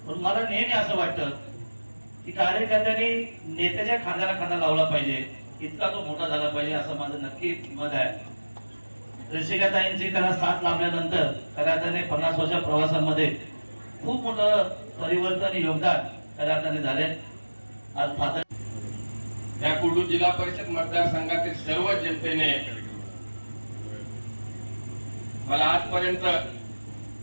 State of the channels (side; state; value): both; inverted; correlation -1.00